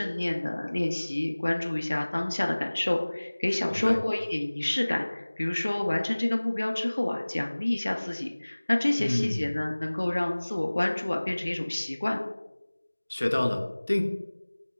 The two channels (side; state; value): both; inverted; correlation -1.00